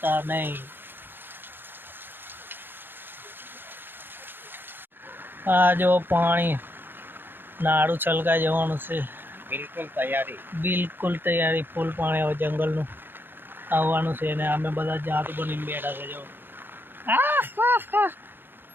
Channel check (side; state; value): left; late; 0.099 ms